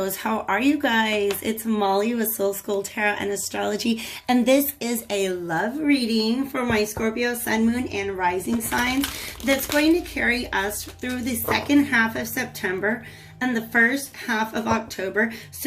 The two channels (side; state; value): both; identical; correlation 1.00